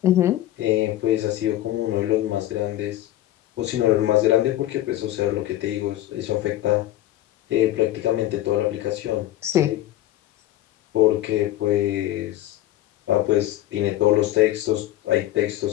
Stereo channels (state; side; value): quieter; right; 14.0 dB